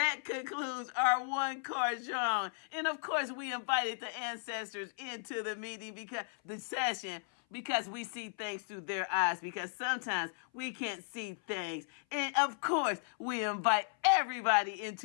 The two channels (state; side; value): silent; right; 54 dB below the other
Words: concludes our one-car genre. And of course, we invited the ancestors into the meeting because we see things through their eyes, because sometimes we can't see things. And of course, we invite everybody